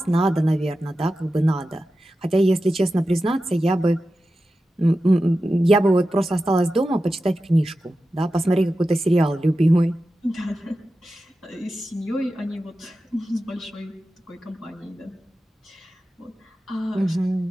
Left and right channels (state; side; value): normal; both; correlation 0.92